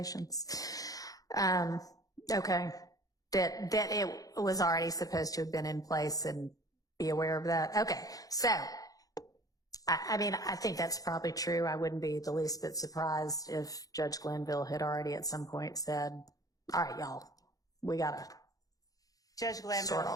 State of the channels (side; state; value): right; late; 0.17 ms